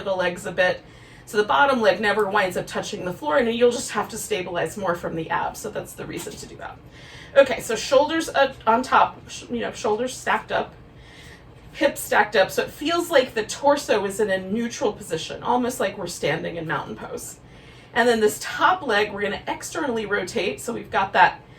the legs a bit so the bottom leg never winds up touching the floor, and you'll just have to stabilize more from the abs. So that's the reason to do that. Okay, so shoulders on top, shoulders stacked up, hips stacked up, so it feels like the torso is in a neutral position, almost like we're standing in mountain pose. And then this top leg, we're gonna externally rotate, so we've got that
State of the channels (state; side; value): identical; both; correlation 1.00